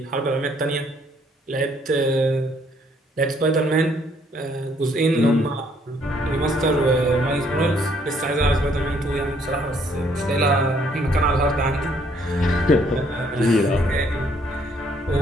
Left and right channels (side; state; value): both; normal; correlation 0.66